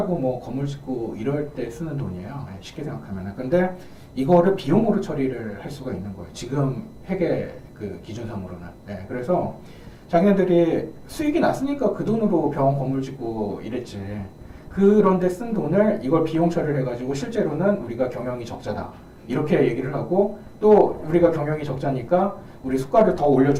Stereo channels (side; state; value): both; identical; correlation 1.00